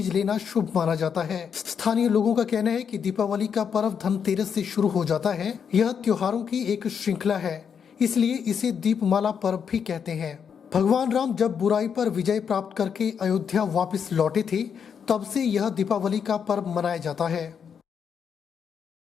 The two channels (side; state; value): right; quieter; 7.1 dB